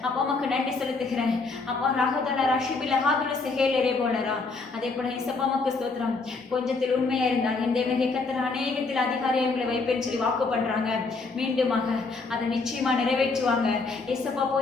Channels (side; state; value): right; quieter; 4.0 dB